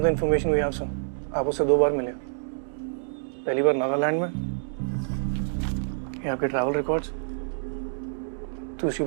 the information we have, sir. आप उससे 2 बार मिले. पहली बार नागालैंड में. ये आपके ट्रैवल रिकॉर्ड्स. दूसरी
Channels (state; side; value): silent; left; digital silence